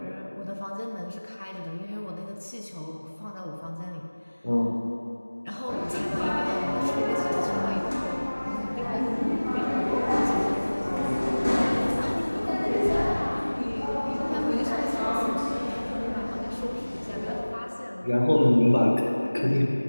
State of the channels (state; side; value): inverted; both; correlation -1.00